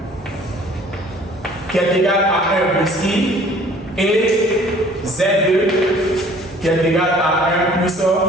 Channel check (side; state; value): both; normal; correlation 0.52